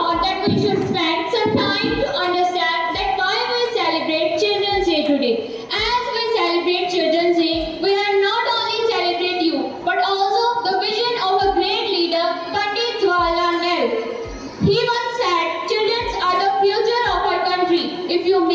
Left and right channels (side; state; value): both; identical; correlation 1.00